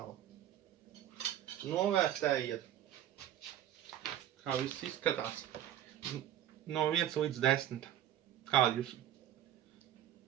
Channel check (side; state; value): left; quieter; 11.5 dB